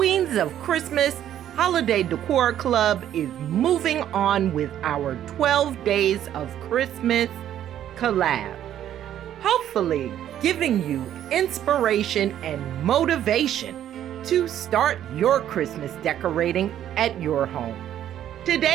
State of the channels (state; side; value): quieter; left; 11.1 dB